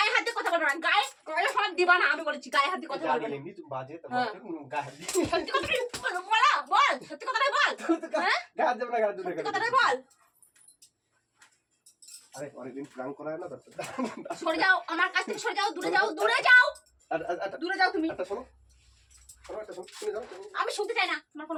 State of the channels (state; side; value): identical; both; correlation 1.00